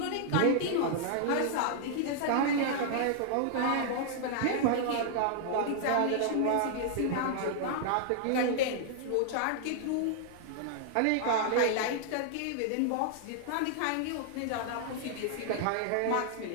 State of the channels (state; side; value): different; both; correlation -0.01